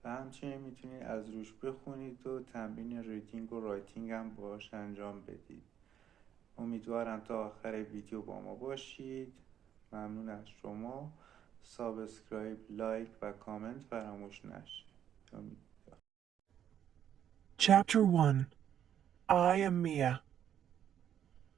و همچنین میتونید از روش بخونید و تمرین ریدینگ و رایتینگ هم باهاش انجام بدید. امیدوارم تا آخر ویدیو با ما باشید. ممنون از شما. سابسکرایب، لایک و کامنت فراموش نشه. Chapter 1. I am Mia.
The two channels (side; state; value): left; quieter; 9.8 dB